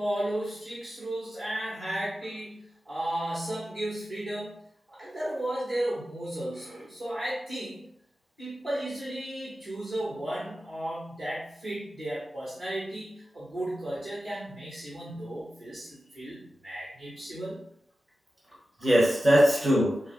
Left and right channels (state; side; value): normal; both; correlation 0.93